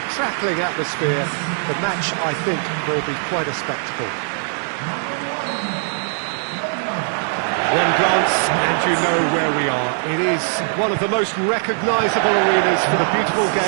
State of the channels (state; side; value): silent; left; 58 dB below the other